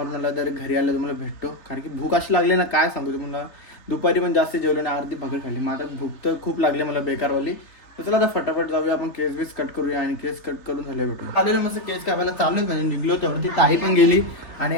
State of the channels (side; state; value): right; late; 3.3 ms